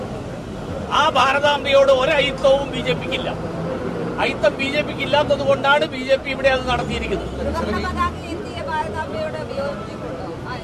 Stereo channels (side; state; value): both; identical; correlation 1.00